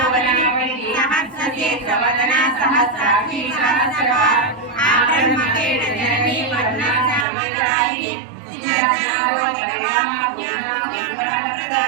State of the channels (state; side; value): drops out; left; at 7.2 s